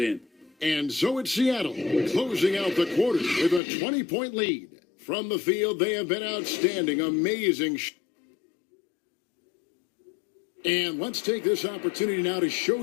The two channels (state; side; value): drops out; right; at 3.6 s